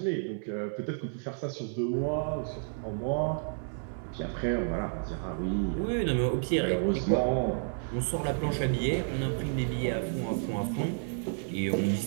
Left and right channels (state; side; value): silent; left; digital silence